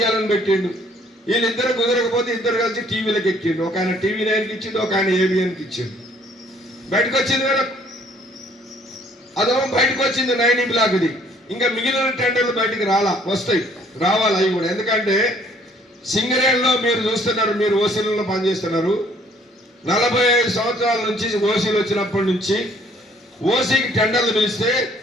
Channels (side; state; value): both; normal; correlation 0.61